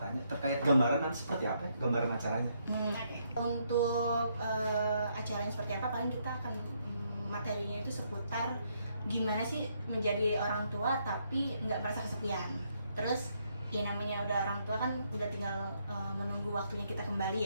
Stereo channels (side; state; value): both; inverted; correlation -0.74